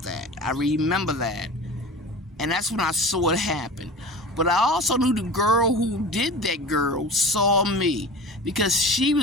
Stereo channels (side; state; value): both; normal; correlation 0.35